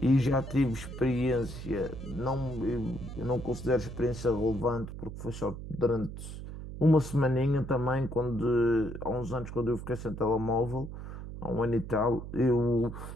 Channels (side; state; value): right; noise; hum, 10 dB below the sound